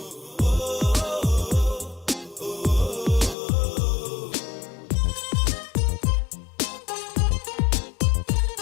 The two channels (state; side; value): drops out; right; at 3.4 s